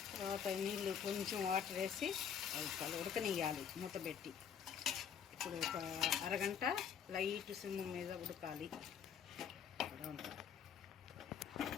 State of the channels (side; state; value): right; quieter; 7.9 dB